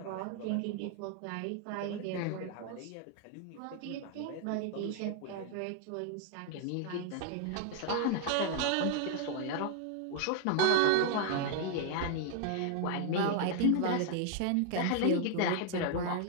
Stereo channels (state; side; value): different; both; correlation 0.00